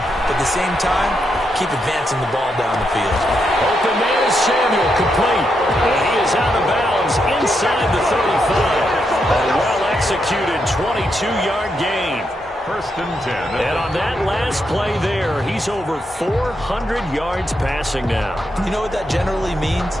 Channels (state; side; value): normal; both; correlation 0.82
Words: but at the same time, keep advancing the ball down the field. Open man is Samuel, complete. And he is out of bounds inside the 35. A well-executed 22-yard gain. 1st and 10. And on that last play there, he's over 400 yards passing now. You know what that generally means?